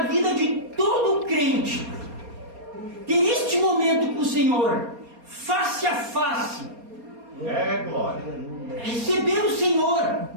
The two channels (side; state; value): left; late; 4.2 ms